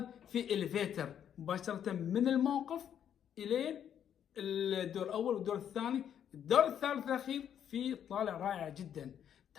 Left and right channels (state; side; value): quieter; right; 9.3 dB